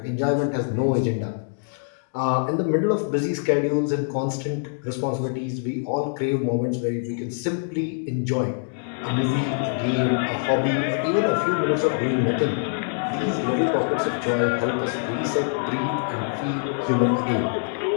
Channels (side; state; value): right; silent; digital silence